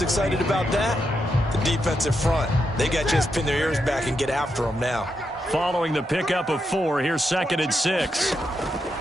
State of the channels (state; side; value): normal; both; correlation 0.83